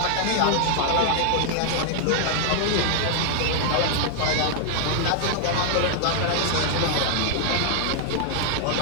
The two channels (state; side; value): different; both; correlation 0.00